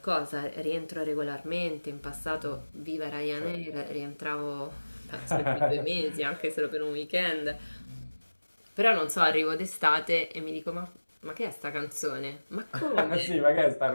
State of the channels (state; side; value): inverted; both; correlation -1.00